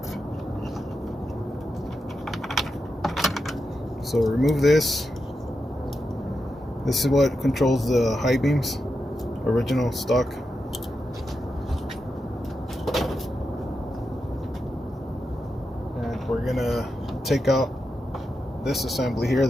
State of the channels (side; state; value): both; normal; correlation 0.88